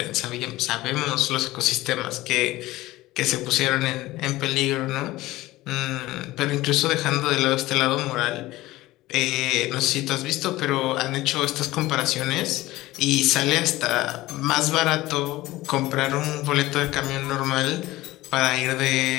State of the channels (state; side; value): quieter; right; 17.9 dB